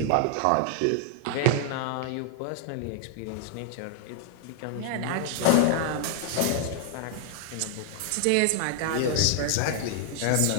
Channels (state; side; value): different; both; correlation 0.00